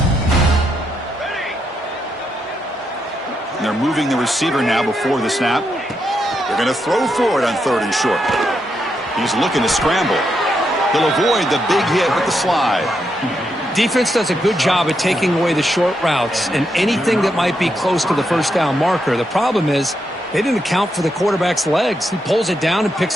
And they're moving the receiver now before the snap. They're going to throw for it on third and short. He's looking to scramble. He'll avoid the big hit with the slide. Defense does a good job at taking away the short routes and anything that might be close to the first down marker. The problem is they didn't account for the quarterback's legs. He pulls it down and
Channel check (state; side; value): normal; both; correlation 0.82